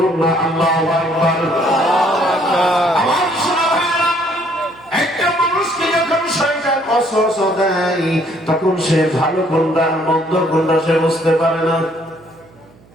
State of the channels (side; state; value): right; noise; hum, 28 dB below the sound